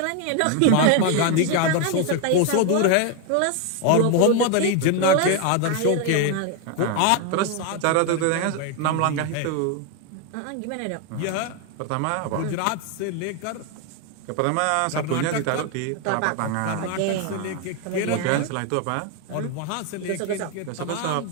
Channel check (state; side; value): different; both; correlation 0.01